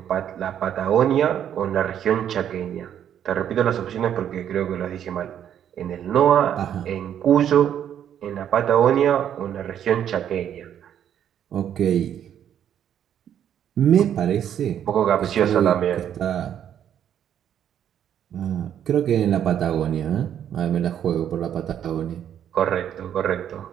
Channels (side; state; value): left; quieter; 9.7 dB